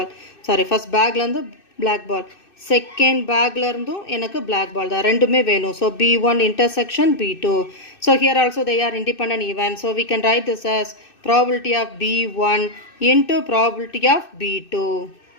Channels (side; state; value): right; late; 2.6 ms